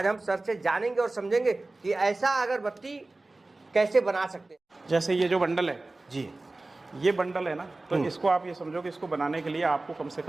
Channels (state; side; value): quieter; left; 3.1 dB